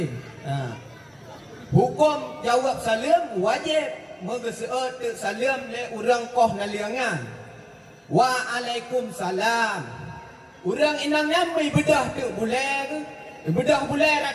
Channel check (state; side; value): identical; both; correlation 1.00